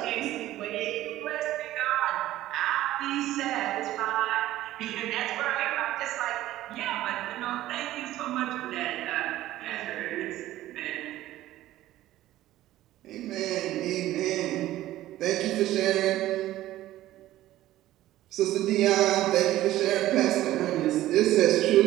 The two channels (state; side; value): quieter; left; 14.7 dB